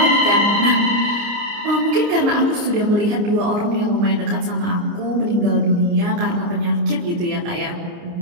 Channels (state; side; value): late; left; 29 ms